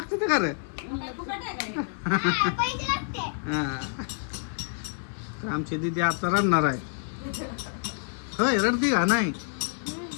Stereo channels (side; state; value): right; silent; 59 dB below the other